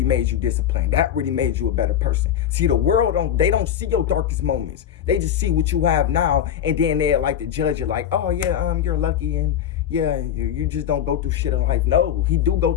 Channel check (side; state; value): right; quieter; 9.7 dB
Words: made you disciplined. That really made you a better person. See, the world, they don't see your darkest moments. They just see what you have now, and then they like to judge you like, oh yeah, you're lucky, and yeah, you just don't go through shit in life. No, he do go